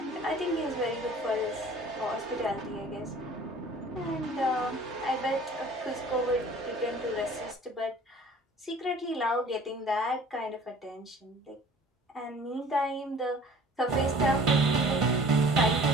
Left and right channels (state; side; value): normal; both; correlation 0.48